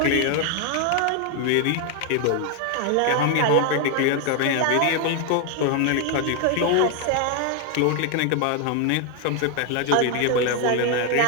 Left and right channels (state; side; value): different; both; correlation 0.00